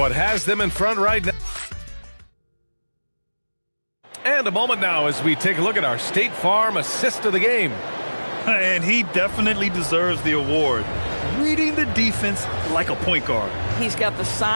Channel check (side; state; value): both; inverted; correlation -1.00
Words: has them in front right now? And a moment now as we take a look at our State Farm assist of the game. And he definitely deserves the award. Reading the defense like a point guard. He's got the